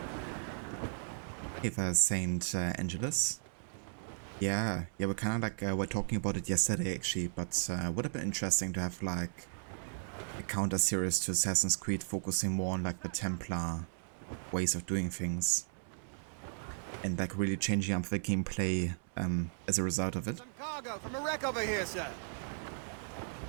Okay, there's St. Angelus. Yeah, we're kind of like, we're talking about it yesterday actually, but would have been interesting to have like a counter series to Assassin's Creed focusing more on like the Templar ways of doing things. And like really changing up the gameplay as a result of it. Cargo from a wreck over here, sir.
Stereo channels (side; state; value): left; silent; 54 dB below the other